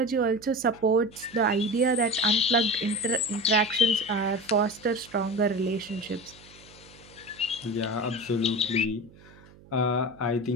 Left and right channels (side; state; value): right; noise; hum, 24 dB below the sound